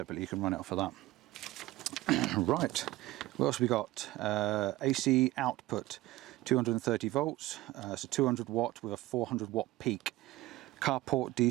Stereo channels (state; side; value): quieter; left; 17.8 dB